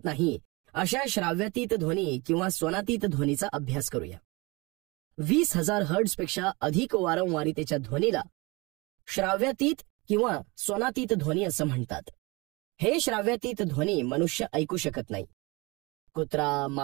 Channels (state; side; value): quieter; left; 25.6 dB